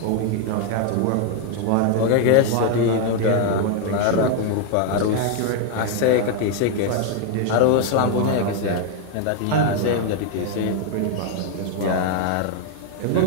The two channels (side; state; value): both; different; correlation 0.00